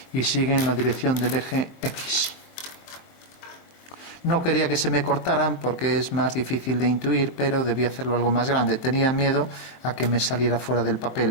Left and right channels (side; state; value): right; late; 23 ms